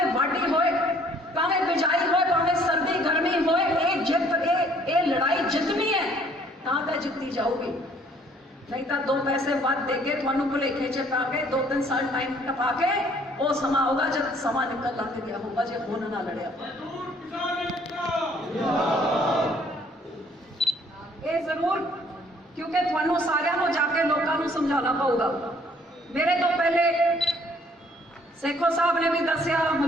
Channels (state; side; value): normal; both; correlation 0.61